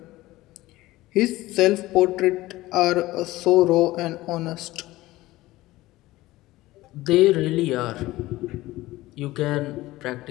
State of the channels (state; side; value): quieter; right; 17.8 dB